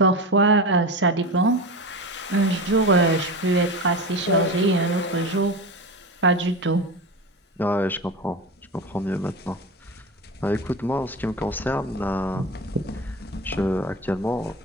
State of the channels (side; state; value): both; normal; correlation 0.25